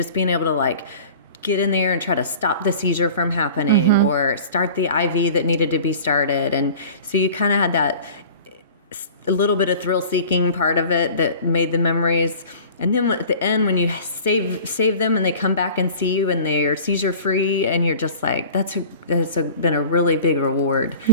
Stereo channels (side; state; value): both; inverted; correlation -0.43